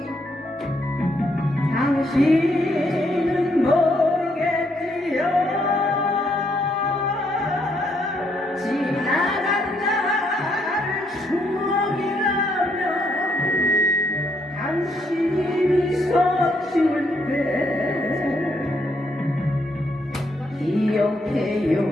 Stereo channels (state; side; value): normal; both; correlation 0.74